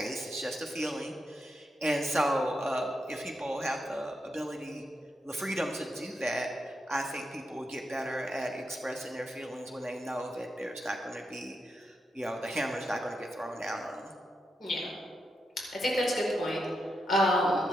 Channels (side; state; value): both; normal; correlation 0.84